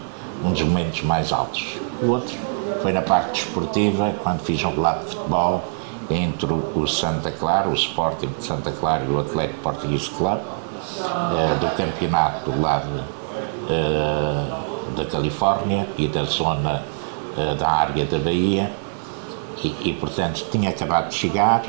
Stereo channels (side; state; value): left; silent; 61 dB below the other